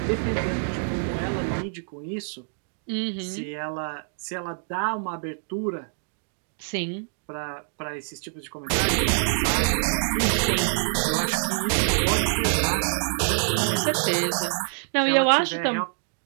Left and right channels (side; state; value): left; silent; digital silence